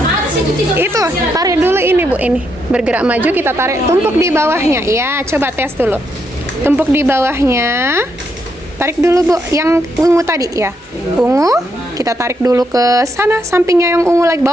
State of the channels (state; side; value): normal; both; correlation 0.78